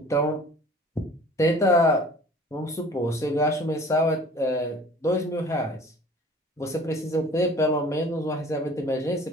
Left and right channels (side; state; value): both; normal; correlation 0.47